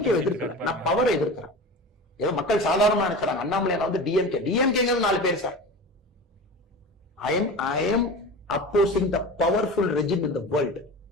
எதிர்க்கல, நான் பவரை எதிர்க்கிறேன். ஏதோ மக்கள் சாதாரணமா நினைக்கிறாங்க அண்ணாமலை வந்து டிஎம்கே 4 பேர் sir. I am opposing the powerful regime in the world.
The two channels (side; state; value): both; normal; correlation 0.32